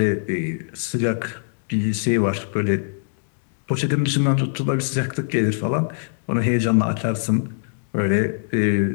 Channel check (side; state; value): right; silent; digital silence